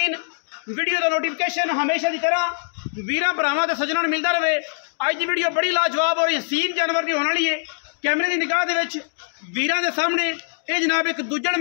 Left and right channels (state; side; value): silent; right; digital silence